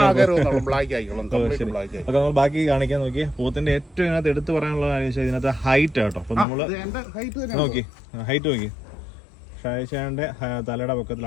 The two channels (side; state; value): right; drops out; at 6.5 s